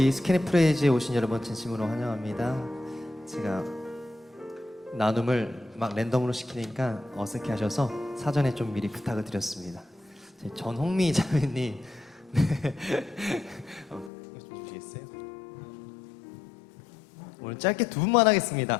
스캐니 프레이즈에 오신 여러분 진심으로 환영합니다. 제가 나눔을 막 랜덤으로 시키니까 어색해하셔서 사전에 좀 미리 부탁을 드렸습니다. 전홍미 자매님, 네. 이거 좀 주시겠어요? 오늘 짧게 두 분만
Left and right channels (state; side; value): drops out; right; at 14.1 s